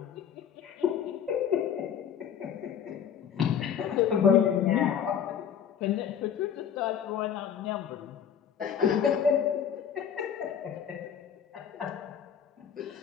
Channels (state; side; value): quieter; right; 8.4 dB